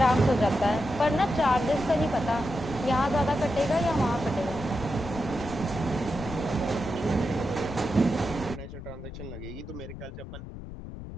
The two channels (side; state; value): left; noise; rumble, 11 dB below the sound